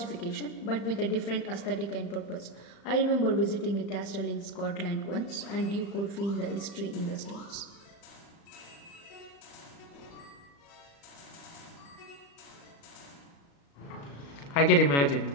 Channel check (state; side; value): late; right; 36 ms